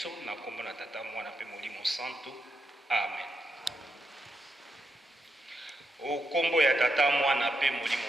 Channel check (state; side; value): normal; both; correlation 0.83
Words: na kombo na tata mwana pe molimo santo. Amen. Okombo ya tata mwana pe